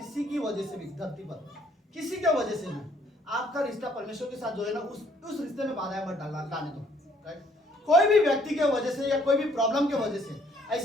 की वजह से भी धरती पर किसी के वजह से भी आपका रिश्ता परमेश्वर के साथ जो है ना उस रिश्ते में बाधाएं मत डालने दो, राइट। कोई भी व्यक्ति के वजह से या कोई भी प्रॉब्लम के वजह से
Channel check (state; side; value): normal; both; correlation 0.64